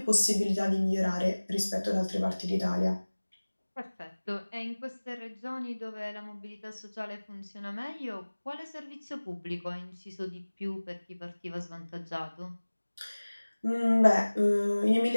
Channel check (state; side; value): inverted; both; correlation -1.00